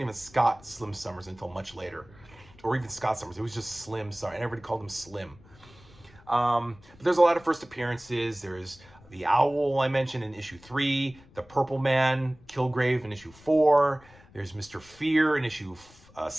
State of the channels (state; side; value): noise; left; rumble, 25 dB below the sound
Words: even Scott Slim Summers until much later, or even Scott Summers. It was just Slim Summers, and everybody called him Slim. But there's a lot of first appearances. There's the Owl I mentioned in issue 3, the Purple Man, Kilgrave in issue 4. There's Mr. Fear in issue